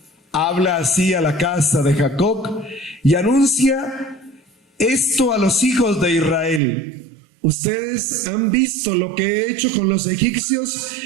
habla así a la casa de Jacob y anuncia esto a los hijos de Israel. Ustedes han visto lo que he hecho con los egipcios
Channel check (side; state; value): left; drops out; at 6.6 s